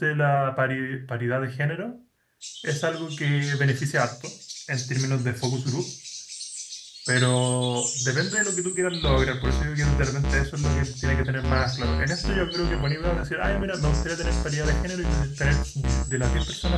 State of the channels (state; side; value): identical; both; correlation 1.00